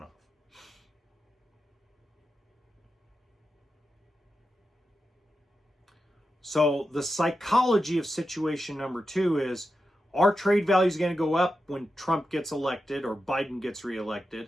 off. So the psychology of situation number 2 is our trade value is going to go up when Trump gets elected or Biden gets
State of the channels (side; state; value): both; normal; correlation 0.89